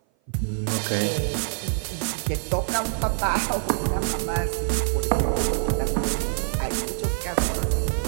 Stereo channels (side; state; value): left; silent; 57 dB below the other